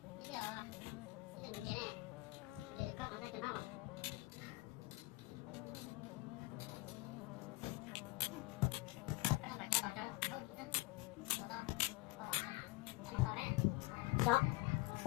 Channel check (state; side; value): quieter; right; 21.2 dB